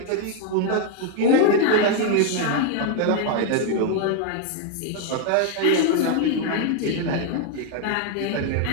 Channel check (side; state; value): both; different; correlation 0.00